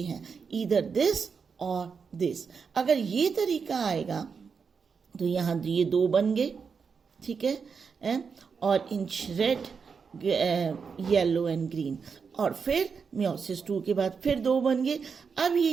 हैं, ईदर दिस और दिस। अगर ये तरीका आएगा तो यहाँ ये 2 बन गए, ठीक है, और in red yellow and green, और फिर meiosis 2 के बाद फिर 2 बन गए। अब ये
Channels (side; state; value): left; quieter; 5.8 dB